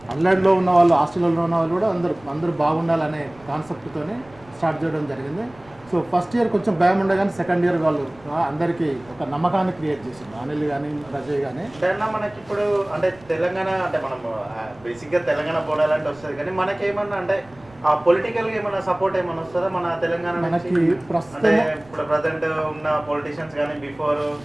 అల్లెడ్లో ఉన్న వాళ్ళు, హాస్టల్లో ఉన్న వాళ్ళు కూడా అందరూ బాగుండాలనే కాన్సెప్ట్తోనే స్టార్ట్ చేయడం జరిగింది. సో ఫస్ట్ ఇయర్ కొంచెం భయం ఉండే, కానీ సెకండ్ ఇయర్ వాళ్ళు అందరికీ ఒక నమ్మకాన్ని క్రియేట్ చేసింది, అనిల్ కానీ రజయ్ కానీ. మనకి ఇప్పుడు అంటే తెలంగాణ అంటే మనం బేసిక్గా తెలంగాణ బోనాలంటే వస్తుంది, కానీ మనకేమన్నా అంటే ఆ పొలిటికల్గా ఏమైనా సపోర్ట్ ఏమైనా వస్తుందా మన తెలంగాణ మనకి అంటే ఇప్పుడు ప్రజెంట్ ఉన్న పొలిటీషియన్స్ కానీ బిఫోర్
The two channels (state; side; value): noise; right; rumble, 25 dB below the sound